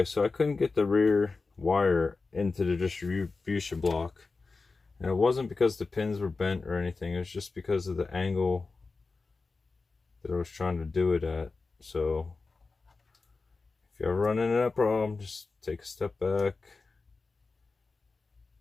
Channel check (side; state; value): right; quieter; 4.0 dB